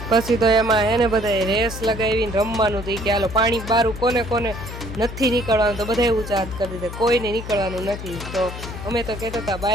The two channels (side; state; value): left; noise; hum, 10 dB below the sound